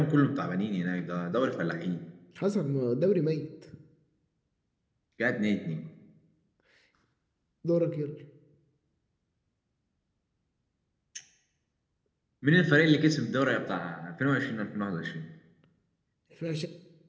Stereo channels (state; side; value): identical; both; correlation 1.00